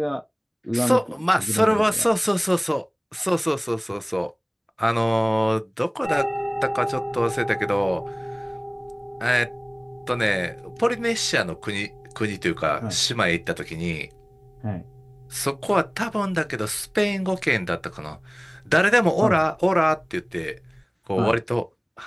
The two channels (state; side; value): identical; both; correlation 1.00